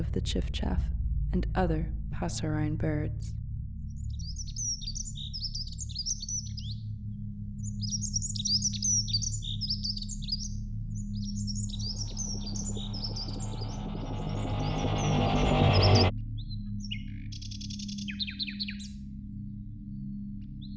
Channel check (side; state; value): both; identical; correlation 1.00